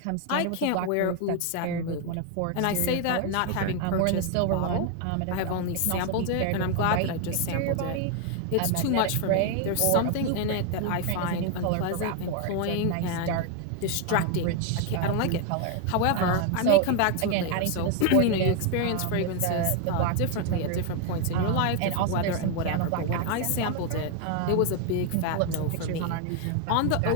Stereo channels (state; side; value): different; both; correlation 0.00